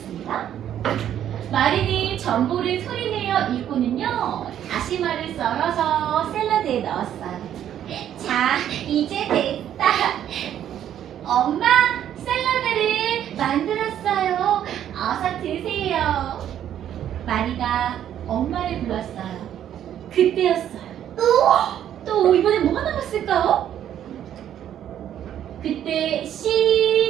마리는 정보를 소리내어 읽고는요, 다시마를 썰어서 샐러드에 넣었어요. 자, 이제 됐다. 엄마, 샐러드를 만들었어요. 어서 드세요. 마리가 엄마를 불렀어요. 그때였어요. 또 이번에 뭐가 남았을까요? 그때 씨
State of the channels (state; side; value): quieter; left; 10.5 dB